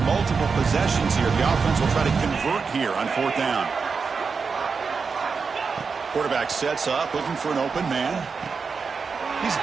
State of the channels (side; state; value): left; quieter; 5.2 dB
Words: multiple possessions here. The offense will try to convert here on fourth down. Quarterback sets up, looking for an open man. He's